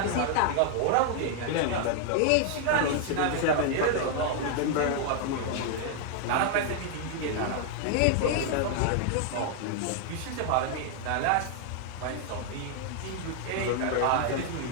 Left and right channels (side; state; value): both; different; correlation 0.00